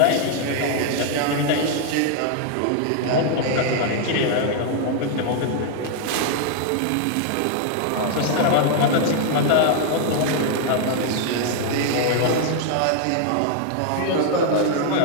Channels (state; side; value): different; both; correlation 0.00